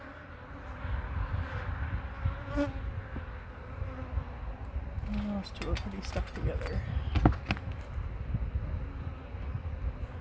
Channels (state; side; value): identical; both; correlation 1.00